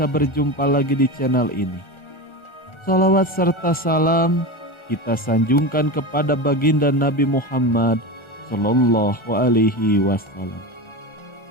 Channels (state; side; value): late; right; 1.4 ms